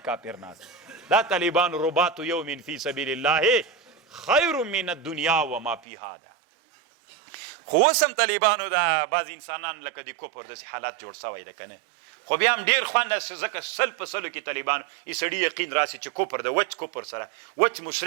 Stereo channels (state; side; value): drops out; left; at 5.8 s